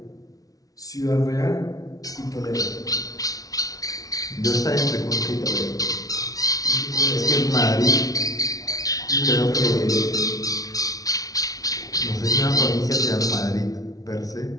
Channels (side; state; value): right; late; 0.18 ms